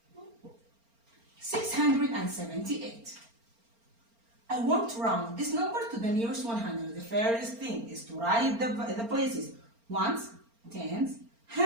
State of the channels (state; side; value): late; left; 4.4 ms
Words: 678. I want to round this number to the nearest 100. The first thing is to write the places. Ones, tens,